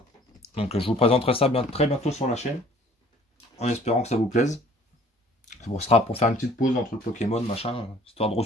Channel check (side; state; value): both; normal; correlation 0.54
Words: Donc je vous présenterai ça très bientôt sur la chaîne. En espérant que ça vous plaise. Ce sera pour faire une petite pause entre le Pokémon, machin, histoire de